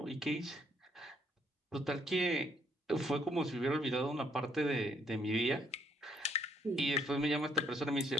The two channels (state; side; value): normal; both; correlation 0.68